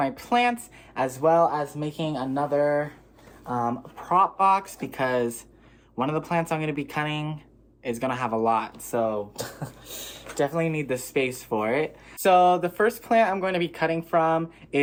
plants, as well as making another prop box, because one of the plants I'm going to be cutting is going to have a lot, so definitely need the space for it. So the first plant I'm going to be cutting from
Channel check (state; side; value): identical; both; correlation 1.00